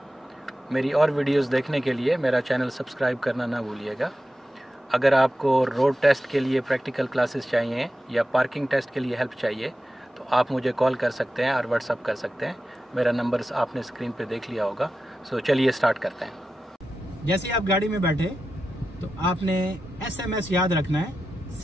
मेरी और वीडियोस देखने के लिए मेरा चैनल सब्सक्राइब करना ना भूलिएगा। अगर आपको रोड टेस्ट के लिए प्रैक्टिकल क्लासेस चाहिए या पार्किंग टेस्ट के लिए हेल्प चाहिए तो आप मुझे कॉल कर सकते हैं और व्हाट्सअप कर सकते हैं। मेरा नंबर आपने स्क्रीन पर देख लिया होगा। सो चलिए स्टार्ट करते हैं। जैसे आप गाड़ी में बैठे तो आपने SMS याद रखना है,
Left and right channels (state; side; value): normal; both; correlation 0.91